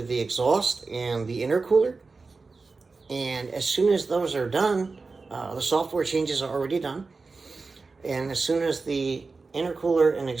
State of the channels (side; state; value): left; quieter; 4.1 dB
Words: the exhaust and the intercooler. And as soon as those are done, the software changes are already done. And as soon as the intercooler and